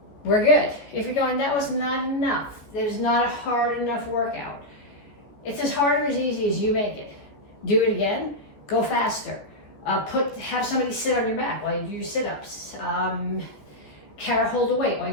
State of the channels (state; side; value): late; right; 14 ms